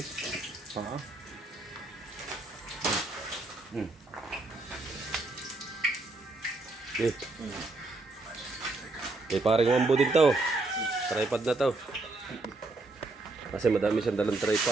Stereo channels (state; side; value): quieter; left; 3.1 dB